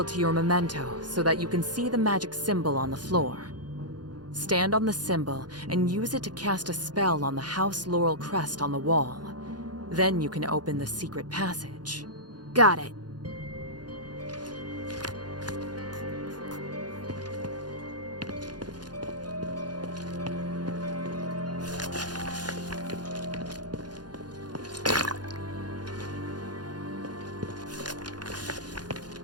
to your memento so that you can see the magic symbol on the floor. Stand on the symbol and use it to cast a spell on the House Laurel crest on the wall. Then you can open the secret passage. Got it.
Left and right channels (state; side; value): late; left; 0.70 ms